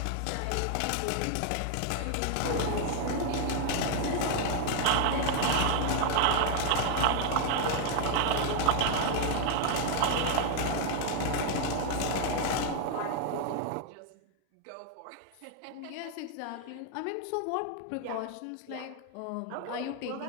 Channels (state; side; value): different; both; correlation 0.00